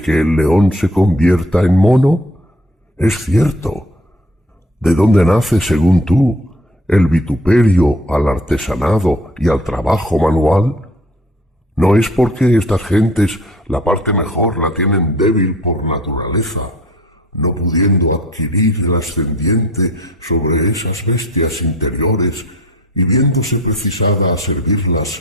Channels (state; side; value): normal; both; correlation 0.51